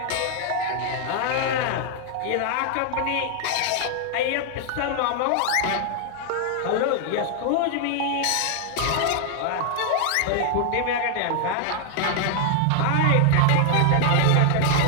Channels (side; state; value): both; different; correlation 0.00